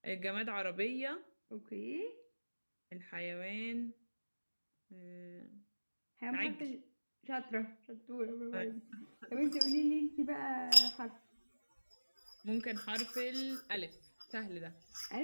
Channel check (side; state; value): both; inverted; correlation -1.00